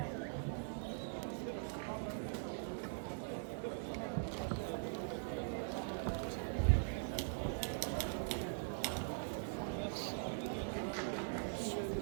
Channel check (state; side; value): silent; left; digital silence